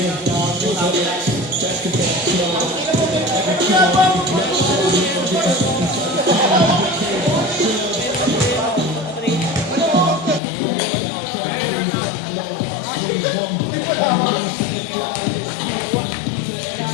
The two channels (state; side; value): drops out; right; at 10.4 s